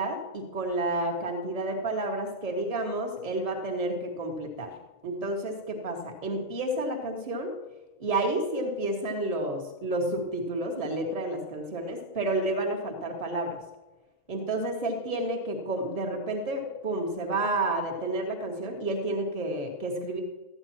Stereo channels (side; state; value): right; late; 1.7 ms